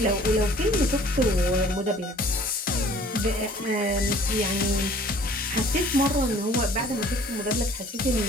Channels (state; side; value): normal; both; correlation 0.52